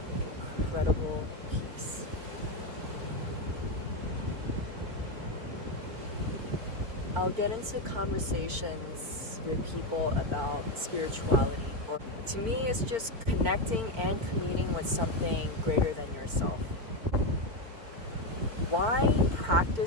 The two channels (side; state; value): left; late; 4.4 ms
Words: incredible peace. I'll get into conversations with people about spirituality, or to me it's just connecting and communing with something greater than yourself. Why